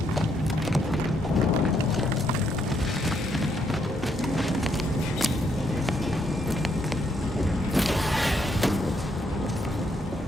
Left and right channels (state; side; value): normal; both; correlation 0.75